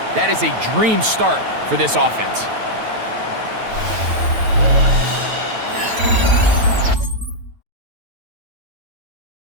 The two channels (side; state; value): left; late; 9.2 ms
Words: that is a dream start for this offense.